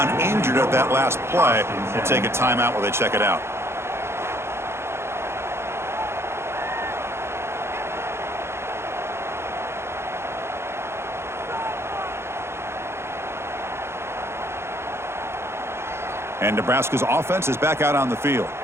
injured at that last play. We'll take a timeout while they check it out. And Nebraska's offense is back out on the field.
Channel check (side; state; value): left; late; 0.12 ms